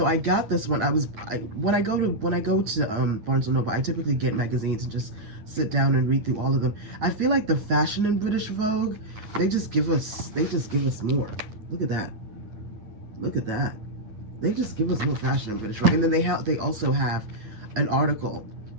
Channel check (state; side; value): late; left; 8.9 ms